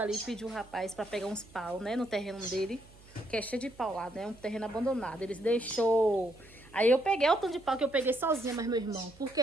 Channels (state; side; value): noise; right; hum, 23 dB below the sound